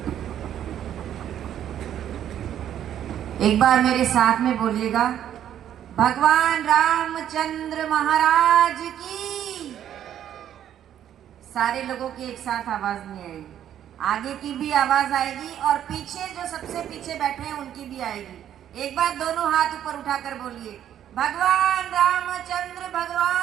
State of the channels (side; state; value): left; quieter; 10.5 dB